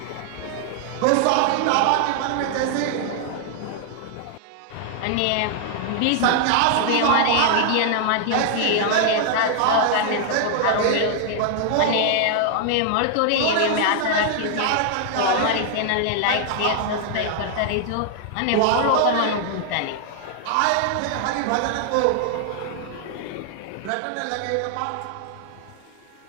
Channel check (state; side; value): different; both; correlation 0.00